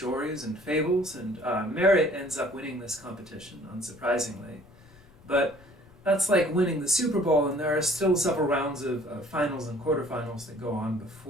and fables, and merit ends up winning this competition, unsurprisingly. But that's like winning the Super Bowl, and there are still several rounds of finals and quarterfinals that go on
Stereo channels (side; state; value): left; noise; rumble, 25 dB below the sound